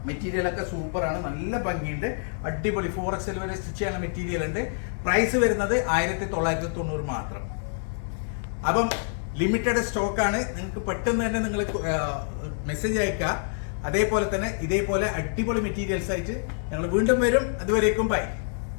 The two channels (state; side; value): silent; right; 60 dB below the other